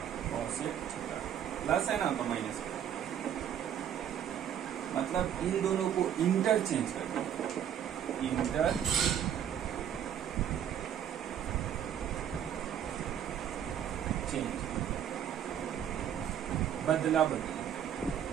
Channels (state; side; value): quieter; left; 9.5 dB